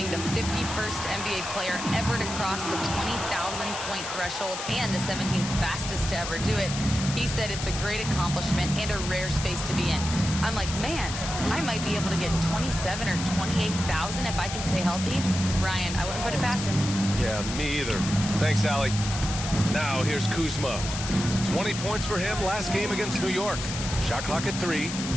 the 51st NBA player ever to cross the 20,000-point threshold and the 17th fastest to ever do it. He said it's a great accomplishment and a rare space to be in. I'm like, man, I might be able to get 27 or 28,000 if I can stay healthy. Ryan, I wouldn't put it past him. Yeah, me either. Thanks, Allie. Now here's Kuzma. 20 points for him last game against New York. Shot clock at 3.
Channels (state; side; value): noise; left; hiss, 6 dB below the sound